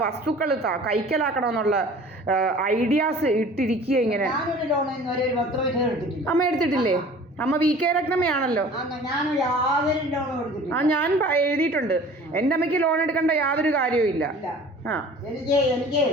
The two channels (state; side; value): normal; both; correlation 0.46